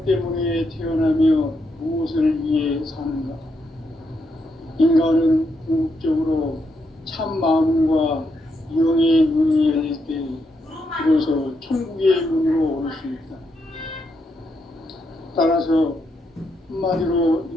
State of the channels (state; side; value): normal; both; correlation 0.80